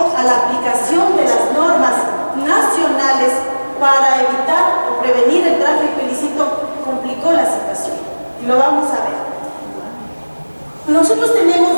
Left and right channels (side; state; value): both; inverted; correlation -1.00